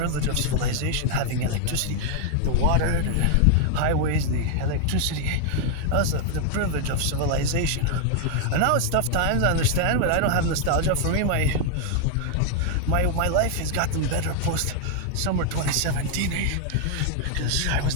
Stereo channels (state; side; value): different; both; correlation 0.00